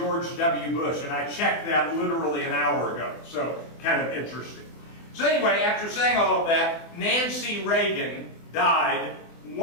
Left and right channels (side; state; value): right; late; 24 ms